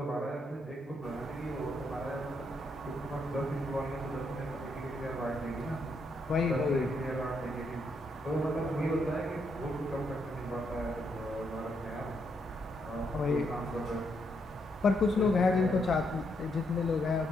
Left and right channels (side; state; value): both; normal; correlation 0.77